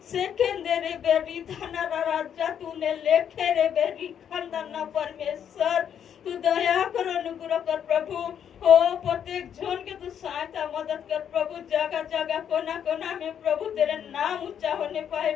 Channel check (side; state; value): right; quieter; 8.7 dB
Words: सेकेंदरे बेरी धना राजा, तूने लेखे रे बेरी खंदना परमेश्वर, तू दया कर अनुग्रह कर प्रभु। ओ प्रत्येक जन के तू सहायता मदद कर प्रभु, जगह जगह कोना कोना में प्रभु तेरे नाम ऊंचा होने पाए